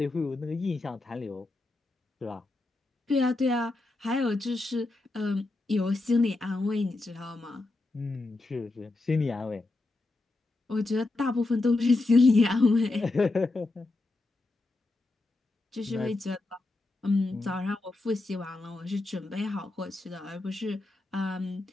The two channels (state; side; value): quieter; right; 3.1 dB